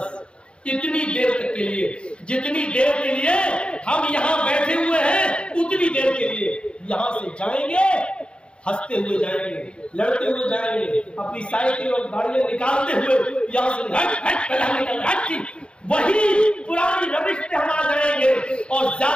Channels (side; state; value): right; late; 0.056 ms